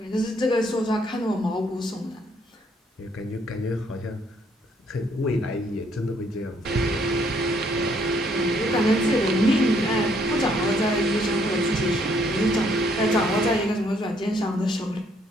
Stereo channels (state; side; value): normal; both; correlation 0.68